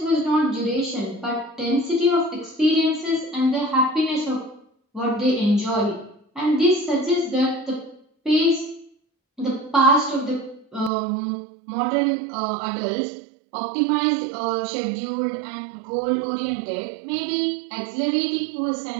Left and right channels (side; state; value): left; drops out; at 10.9 s